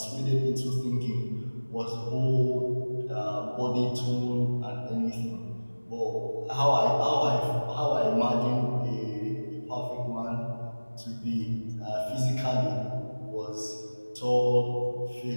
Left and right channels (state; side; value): inverted; both; correlation -1.00